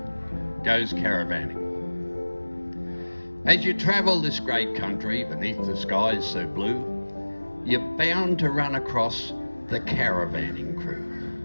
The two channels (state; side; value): inverted; both; correlation -1.00